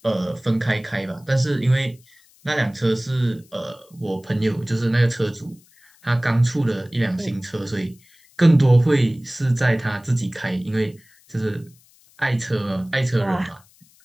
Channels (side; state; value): left; noise; hiss, 30 dB below the sound